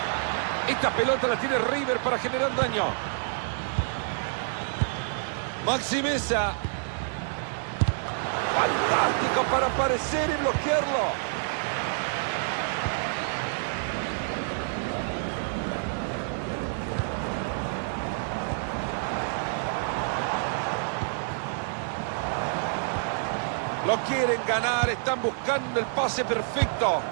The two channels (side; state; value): left; silent; 59 dB below the other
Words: Esta pelota la tiene River para generar daño. Maxi Mesa. Fantástico para aparecer y bloquearlo. Lo quieren ganar, están buscando el pase perfecto.